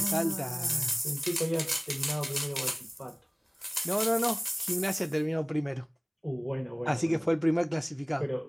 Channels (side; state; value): both; identical; correlation 1.00